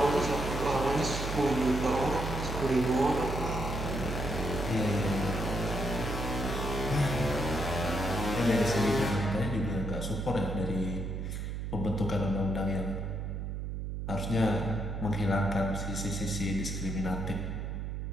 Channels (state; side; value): noise; right; hum, 4 dB below the sound